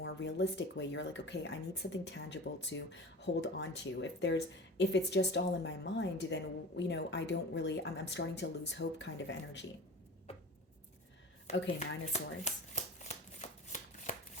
realistic way. You're like, okay, I need something tangible to hold on to. If it's just all in my mind, then I don't really, I'm starting to lose hope kind of energy. Okay, Nine of Swords.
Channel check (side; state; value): both; normal; correlation 0.35